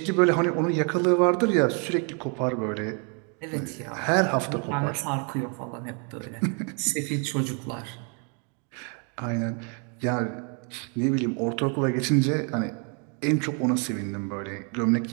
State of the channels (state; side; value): quieter; left; 37.8 dB